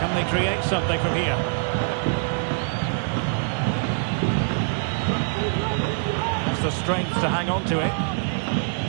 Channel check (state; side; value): silent; left; digital silence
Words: they create something from here? Has the strength to hang on to it.